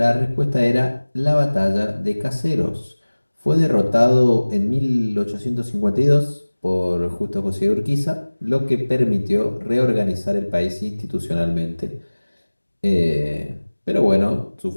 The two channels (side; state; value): both; inverted; correlation -1.00